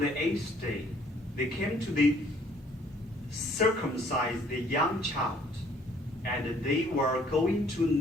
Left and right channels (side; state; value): both; normal; correlation 0.60